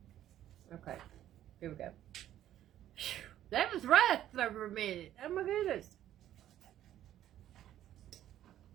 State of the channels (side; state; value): left; quieter; 12.1 dB